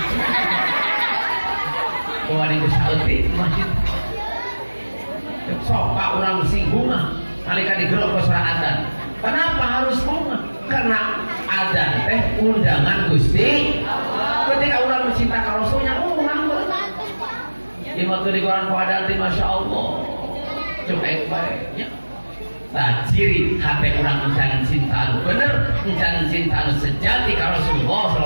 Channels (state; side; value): inverted; both; correlation -1.00